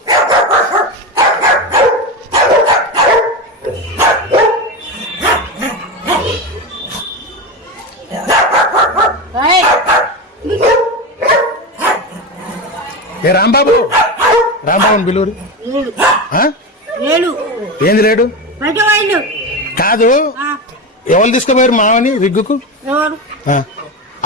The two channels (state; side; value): normal; both; correlation 0.19